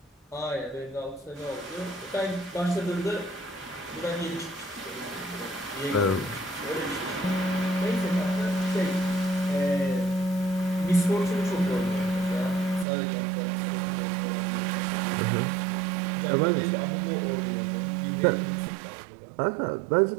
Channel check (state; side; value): drops out; left; at 12.9 s